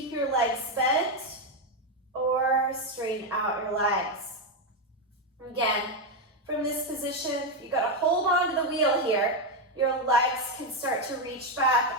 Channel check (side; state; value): both; normal; correlation 0.06